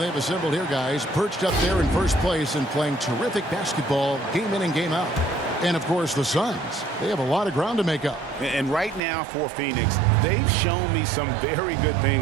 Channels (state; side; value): drops out; left; at 9.0 s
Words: assembled here, guys. Perched up there in first place and playing terrific basketball game in and game out. And, of course, the Suns. They have a lot of ground to make up. And right now for Phoenix, they've shown me some very good